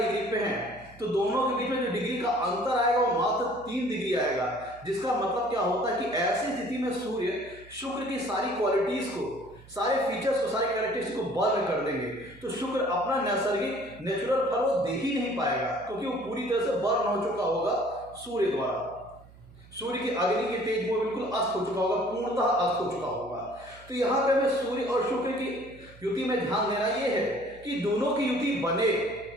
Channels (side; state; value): right; noise; hum, 22 dB below the sound